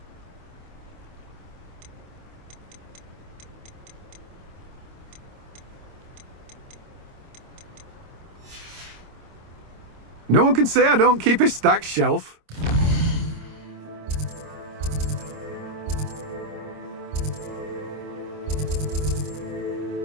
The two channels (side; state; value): left; late; 26 ms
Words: No one can say I don't keep a stacked shelf.